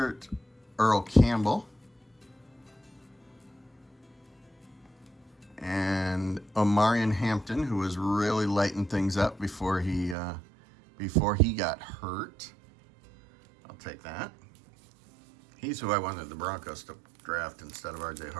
Earl Campbell. And Omarion Hampton, who was really lighting things up before he got hurt. I'll take that. He's who I wanted the Broncos to draft instead of RJ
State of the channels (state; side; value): drops out; left; at 10.2 s